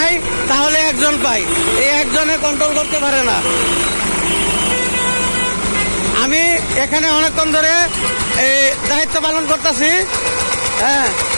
তাহলে একজন পাই, এই একজনে কন্ট্রোল করতে পারে না। আমি এখানে অনেকক্ষণ ধরে এই দায়িত্ব পালন করতেছি। হ্যাঁ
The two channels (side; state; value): both; inverted; correlation -1.00